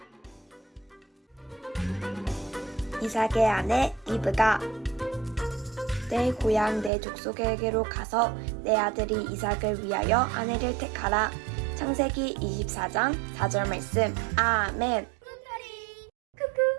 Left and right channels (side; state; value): left; drops out; at 6.9 s